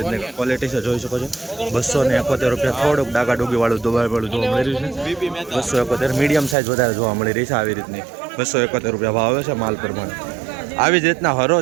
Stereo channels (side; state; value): left; drops out; at 6.6 s